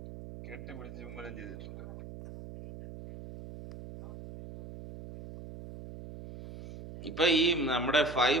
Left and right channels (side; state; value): right; noise; hum, 13 dB below the sound